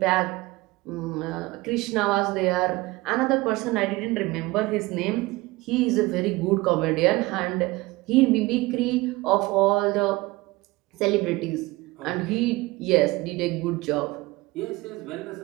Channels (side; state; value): left; quieter; 21.3 dB